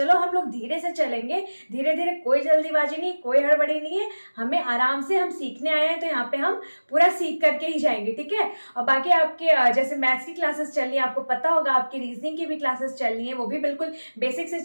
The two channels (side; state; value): both; inverted; correlation -1.00